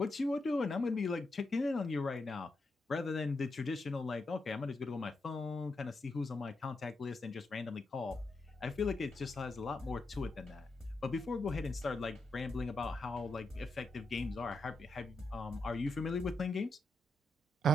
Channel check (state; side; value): normal; both; correlation 0.84